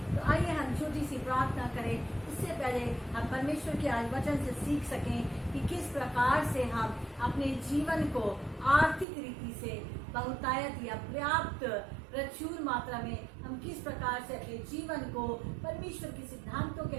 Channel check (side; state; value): left; drops out; at 9.1 s